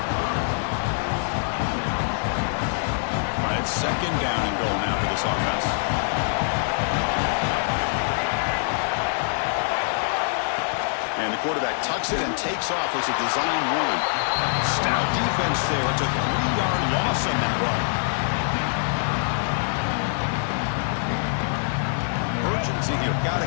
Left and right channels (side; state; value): right; silent; 62 dB below the other